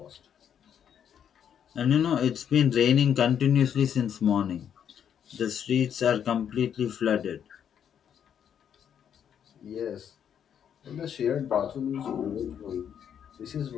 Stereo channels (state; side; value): quieter; right; 8.7 dB